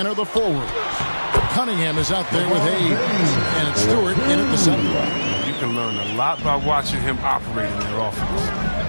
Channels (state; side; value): inverted; both; correlation -1.00